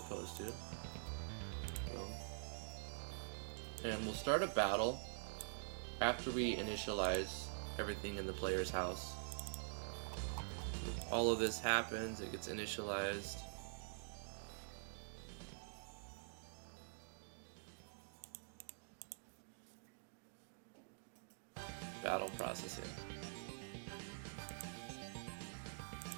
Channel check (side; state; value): left; silent; digital silence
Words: to. And we'll start a battle after we initialize everything in the player's house. All of this happens, it gets initialized. Battle processing.